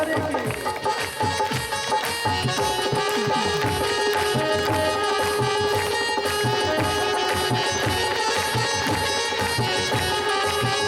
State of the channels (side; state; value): both; identical; correlation 1.00